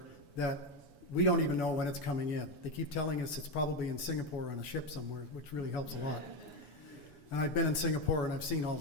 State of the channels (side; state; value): right; late; 7.0 ms